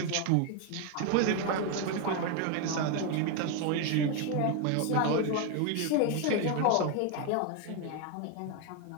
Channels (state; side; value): different; both; correlation 0.01